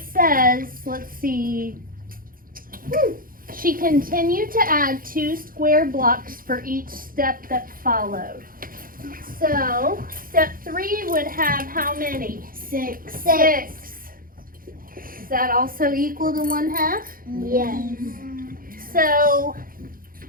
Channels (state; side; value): late; left; 0.41 ms